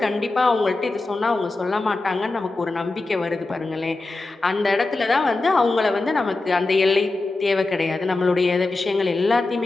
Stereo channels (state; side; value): quieter; right; 3.3 dB